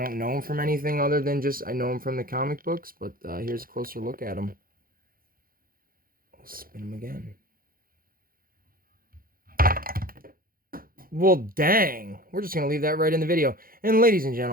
know him from anything other than just I know him from the comic books, but here's a closer look at him. I'll spin him again. Well, dang. We're just going to leave that right in the video. And ladies and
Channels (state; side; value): late; left; 0.42 ms